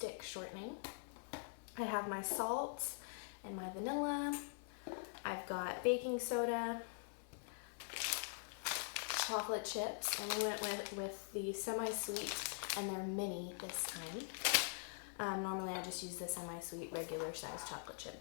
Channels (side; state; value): right; silent; digital silence